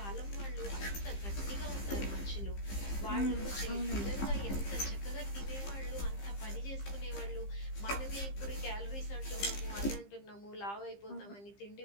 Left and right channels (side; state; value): right; late; 15 ms